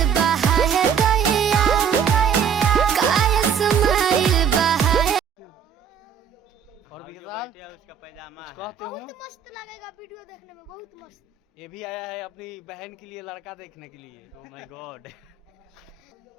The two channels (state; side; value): quieter; left; 7.4 dB